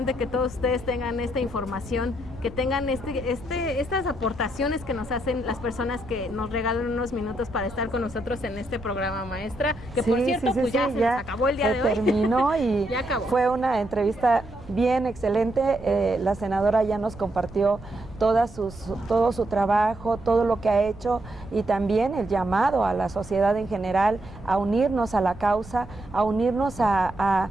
que todos ustedes tengan esta información, que tengan estas aportaciones que nos hacen las personas que nos regalan unos minutos para estar con nosotros en este programa, maestra, que por cierto pues ya se nos acabó el día de hoy. Terminó y ya acabó. Fue una entrevista bien excelente. La senadora ya nos compartió todo su trabajo, todo lo que ha hecho, y también el llamado a la sociedad en general a unirnos a la causa, a unirnos a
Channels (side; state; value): right; noise; rumble, 18 dB below the sound